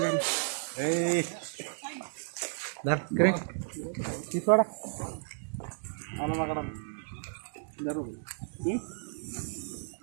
सोडा आला माकडा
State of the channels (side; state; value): left; silent; digital silence